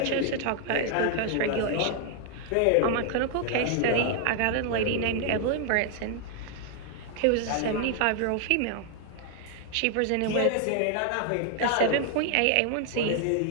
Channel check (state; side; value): different; both; correlation 0.00